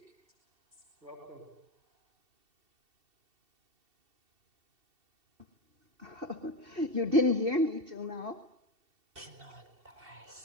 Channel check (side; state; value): left; late; 2.7 ms